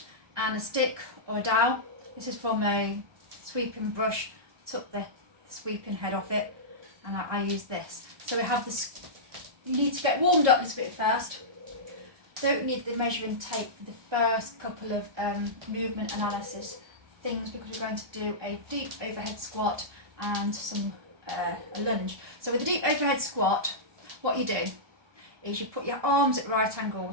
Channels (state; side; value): late; left; 1.2 ms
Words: and a stick or a dowel. This is from a sweeping brush. Took the sweeping head off it and I use this. So we have this, you need to get warmed up a little bit first. Don't need the measuring tape for the first couple of movement analysis things because we're going to do a deep overhead squat and a lunge. So with the deep overhead squat, what you do is you put your arms at right